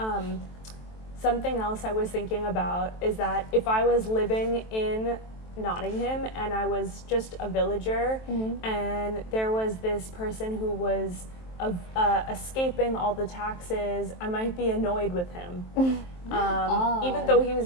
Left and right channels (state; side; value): late; right; 23 ms